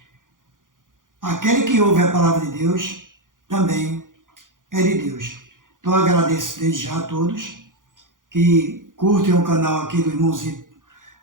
aquele que ouve a palavra de Deus também é de Deus. Então eu agradeço desde já a todos que curtem o canal aqui do irmãozinho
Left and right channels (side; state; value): left; late; 0.89 ms